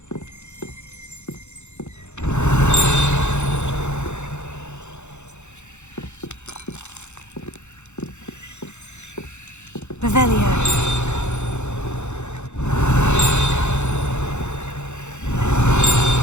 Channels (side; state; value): right; late; 0.83 ms